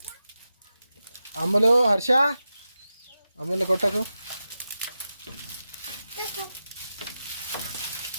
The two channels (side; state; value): both; inverted; correlation -0.91